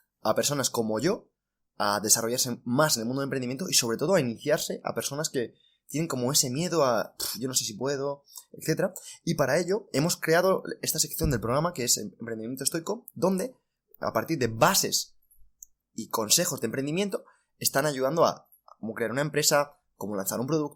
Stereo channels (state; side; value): identical; both; correlation 1.00